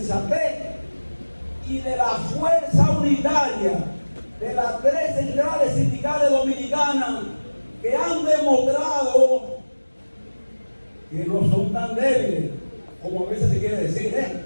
y de la fuerza unitaria de las tres centrales sindicales dominicanas, que han demostrado que no son tan débiles como a veces se quiere decir,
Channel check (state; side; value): inverted; both; correlation -1.00